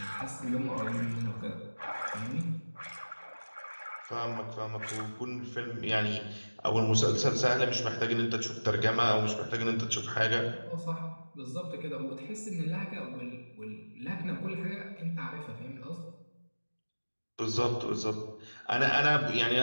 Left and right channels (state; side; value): inverted; both; correlation -1.00